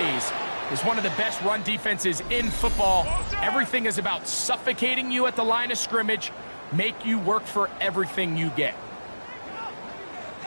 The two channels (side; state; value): both; inverted; correlation -1.00